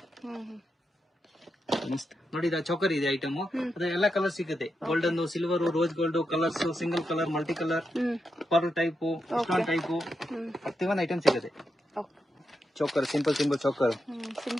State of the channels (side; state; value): both; normal; correlation 0.86